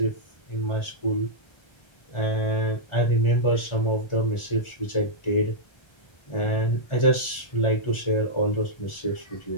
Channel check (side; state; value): right; late; 1.4 ms